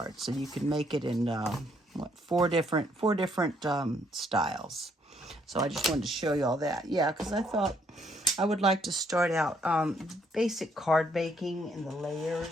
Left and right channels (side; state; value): both; normal; correlation 0.69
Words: So you can make it in, what, four different styles. So I just wanted to show you all that. Yeah, because I thought I would like to start out basic card baking in the